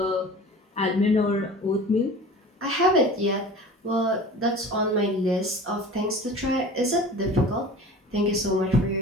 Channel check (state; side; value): normal; both; correlation 0.39